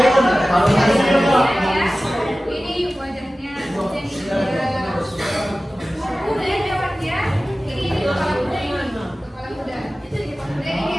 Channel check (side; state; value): both; normal; correlation 0.96